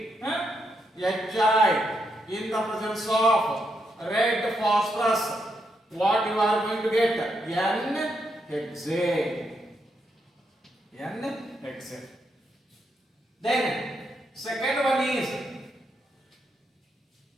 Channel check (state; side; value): normal; both; correlation 0.80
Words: HI in the presence of red phosphorus, what you are going to get? N-hexane. N-hexane. Then second one is